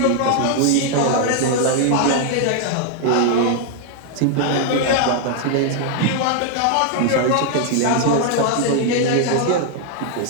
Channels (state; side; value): different; both; correlation 0.00